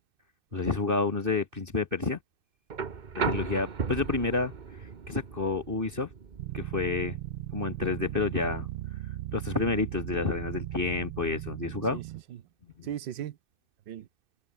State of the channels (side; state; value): left; late; 2.6 ms